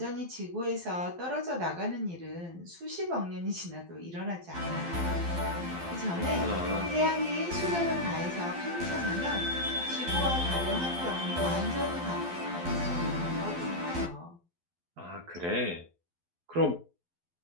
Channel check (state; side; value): late; left; 12 ms